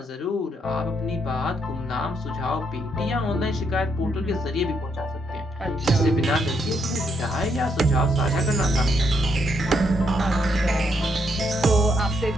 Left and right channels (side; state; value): both; normal; correlation 0.76